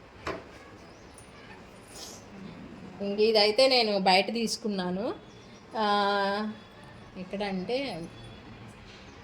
ఇంక ఇదైతే నేను బయట తీసుకున్నాను. ఎక్కడంటే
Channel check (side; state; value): both; identical; correlation 1.00